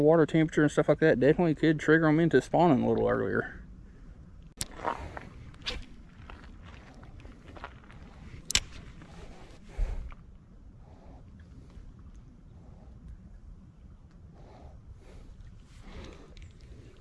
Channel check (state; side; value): identical; both; correlation 1.00